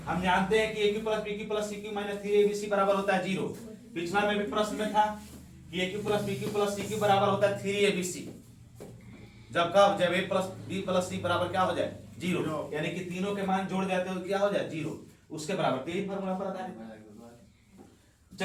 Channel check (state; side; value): identical; both; correlation 1.00